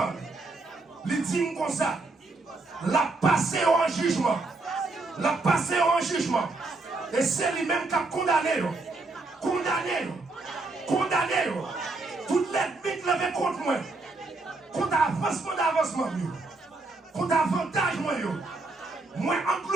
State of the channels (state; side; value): quieter; left; 3.3 dB